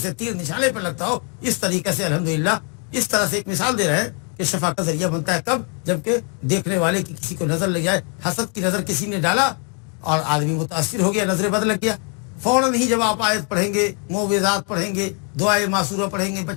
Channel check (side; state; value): right; quieter; 38.3 dB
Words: تیر نشانے پر لگتا ہو، اس طریقے سے الحمدللہ اس طرح سے ایک مثال دے رہے ہیں کہ شفا کا ذریعہ بنتا ہے. کب؟ جبکہ دیکھنے والے کی کسی کو نظر لگ جائے، حسد کی نظر کسی نے ڈالا اور آدمی متاثر ہو گیا، نظر بد لگ گیا، فوراً ہی جب آپ آیت پڑھیں گے، معوذات پڑھیں گے، دعائے معصورہ پڑھیں گے،